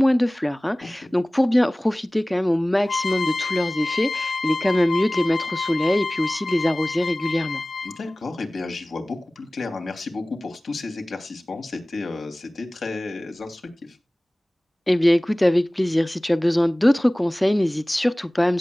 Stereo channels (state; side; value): normal; both; correlation 0.98